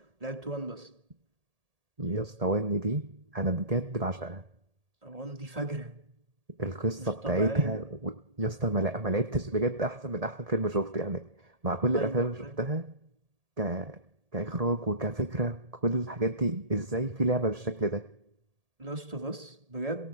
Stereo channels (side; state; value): left; late; 1.8 ms